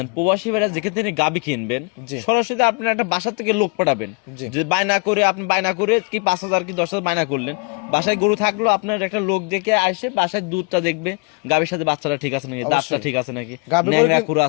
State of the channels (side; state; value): right; quieter; 32.5 dB